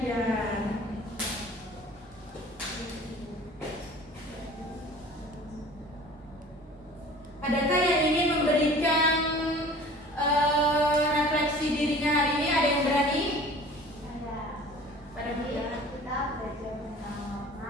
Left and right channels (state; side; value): normal; both; correlation 0.45